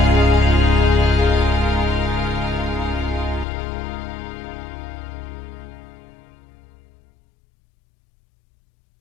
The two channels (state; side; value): drops out; right; at 3.5 s